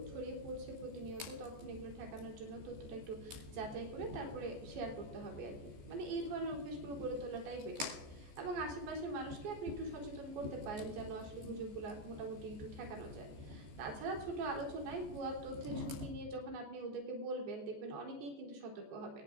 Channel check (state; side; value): late; left; 14 ms